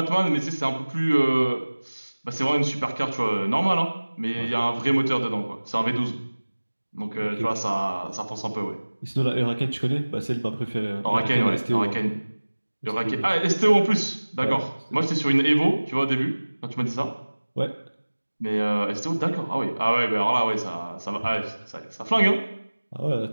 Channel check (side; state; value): both; inverted; correlation -1.00